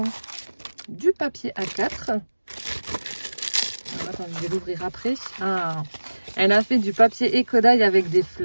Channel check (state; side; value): inverted; both; correlation -1.00